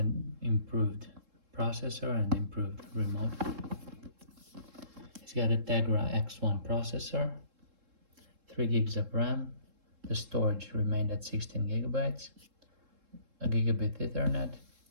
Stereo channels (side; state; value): left; late; 3.7 ms